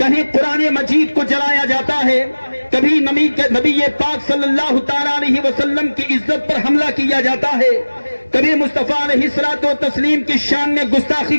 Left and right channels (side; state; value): both; inverted; correlation -1.00